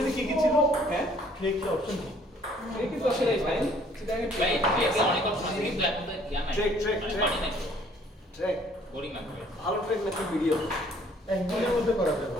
কি কি ছিল হ্যাঁ ট্রেক কি অপশন কি এই কিন্তু আসলে ফাইন সেটা আমি ভাই এটা অনেক অপশন আছে কিন্তু এখন তো ইয়া নাই ট্রেক পানি নাই ট্রেক বোরিং লাগবে ভালো ট্রেক নাকি ভিডিও একদিনের মধ্যে করা যাবে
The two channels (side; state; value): both; normal; correlation 0.59